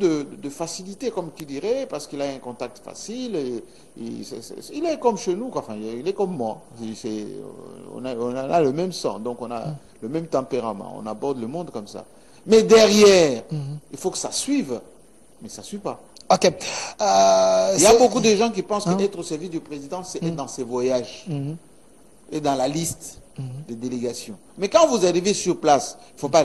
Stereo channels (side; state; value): both; identical; correlation 1.00